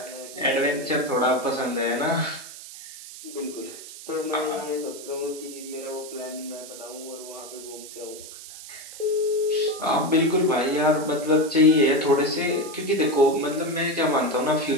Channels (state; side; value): noise; right; hiss, 14 dB below the sound